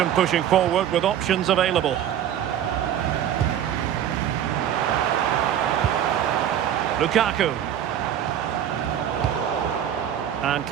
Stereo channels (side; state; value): left; quieter; 10.3 dB